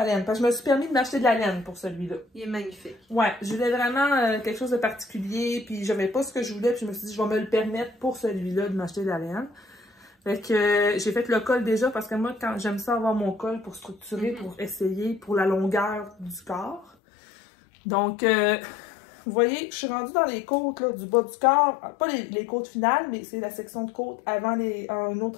laine. Parce que je me suis permis de m'acheter de la laine pour celui-là. Il est magnifique. Ouais, je voulais vraiment quelque chose de particulier, puis j'avais pas ce que je voulais, puis je me suis dit, je vais me le permettre pour celui-là de m'acheter de la laine. Fait que j'ai fait le col déjà, parce que moi, quand j'aime ça avoir mon col pour structurer, pour essayer, pour la longueur du corps. Donc, vous voyez, je suis rendue dans les côtes là, du bas du corps, pas les côtes finales, mais c'est la section de côte avant un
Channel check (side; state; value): right; drops out; at 16.9 s